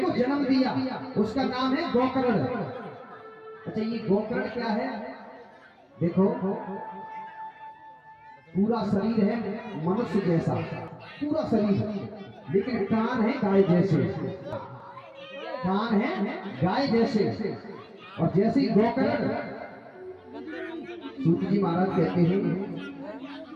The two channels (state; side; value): identical; both; correlation 1.00